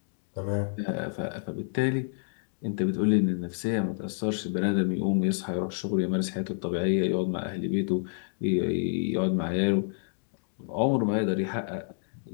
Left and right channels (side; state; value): right; silent; digital silence